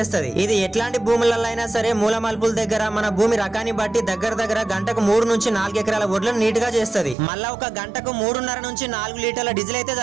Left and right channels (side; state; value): left; drops out; at 7.2 s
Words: ఇది ఎట్లాంటి భూములలో అయినా సరే మూల మలుపుల దగ్గర మన భూమి రకాన్ని బట్టి దగ్గర గంటకు 3 నుంచి 4 ఎకరాల ఒడ్లను నీట్ గా చేస్తది. మళ్ళా ఒక గంటకు 3.5 నుంచి 4 లీటర్ల డీజిల్ అయితే